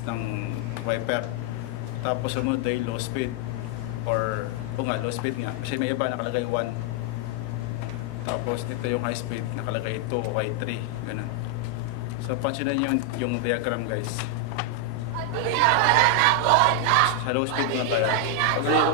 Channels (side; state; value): both; different; correlation 0.00